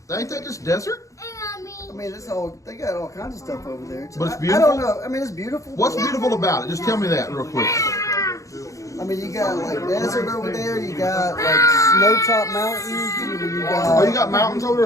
Ain't that just desert? I mean, they got all kinds of stuff over there. But it's I beautiful? don't know. I mean, it's beautiful. What's beautiful about it? Just tell me that real quick. I mean, you got like desert over there. You got like snow-top mountains. You got. Oh, you got mountains over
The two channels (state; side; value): late; right; 0.16 ms